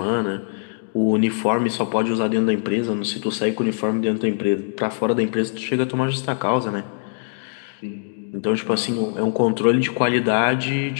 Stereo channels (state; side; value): silent; right; digital silence